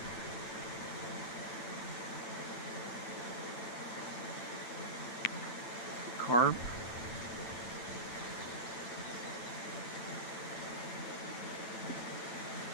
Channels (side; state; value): right; late; 9.0 ms